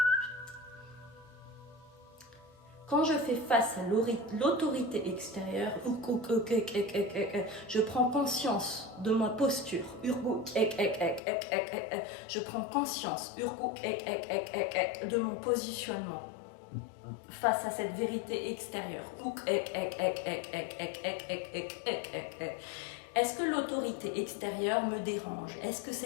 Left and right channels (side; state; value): right; drops out; at 11.2 s